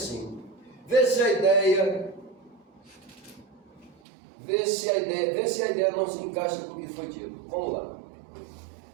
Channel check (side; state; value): left; drops out; at 4.0 s